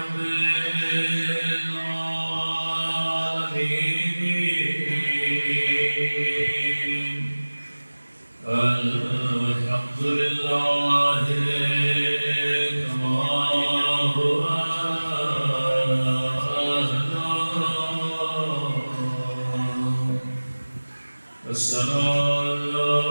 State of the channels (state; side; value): inverted; both; correlation -1.00